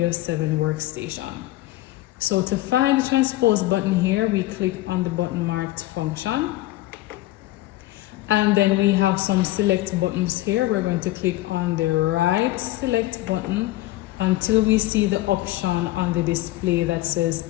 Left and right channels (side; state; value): right; quieter; 17.0 dB